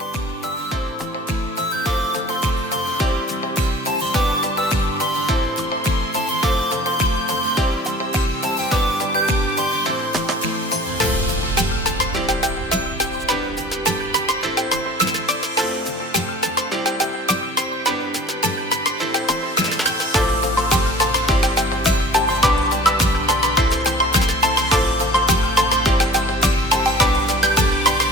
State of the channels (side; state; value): both; normal; correlation 0.44